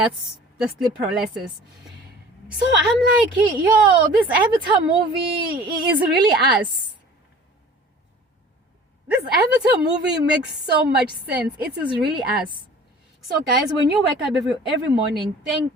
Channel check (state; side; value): normal; both; correlation 0.46